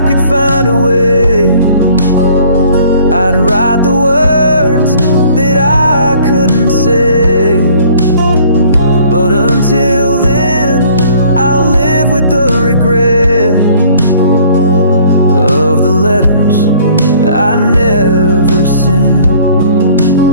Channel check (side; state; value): both; inverted; correlation -0.56